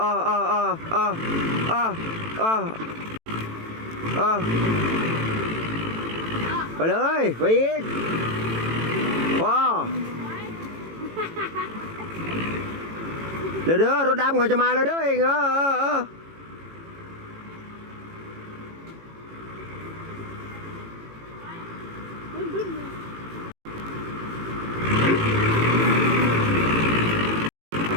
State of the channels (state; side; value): late; left; 18 ms